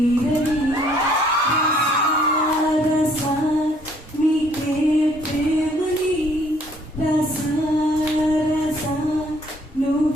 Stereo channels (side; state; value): both; normal; correlation 0.62